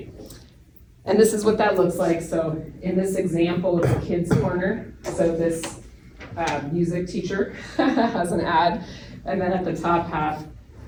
And this is what that looks like. So in this example, it's a kids corner. So this music teacher has an ad, and then at the top half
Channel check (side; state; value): both; identical; correlation 1.00